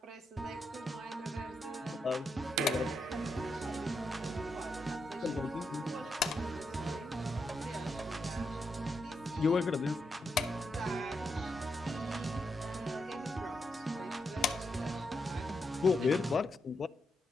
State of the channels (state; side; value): normal; both; correlation 0.83